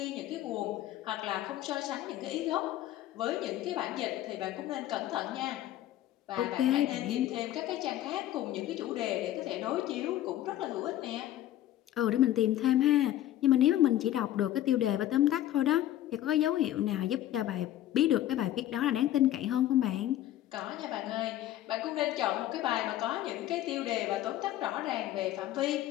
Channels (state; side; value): quieter; right; 13.2 dB